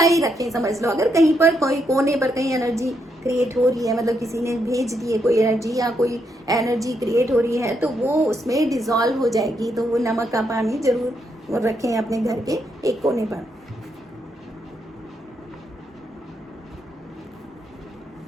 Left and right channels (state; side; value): normal; both; correlation 0.78